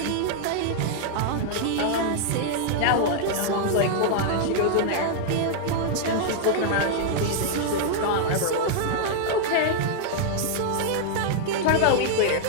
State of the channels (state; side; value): different; both; correlation 0.00